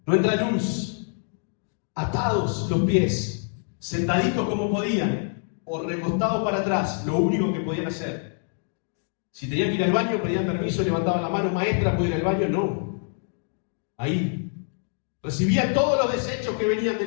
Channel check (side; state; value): right; silent; 61 dB below the other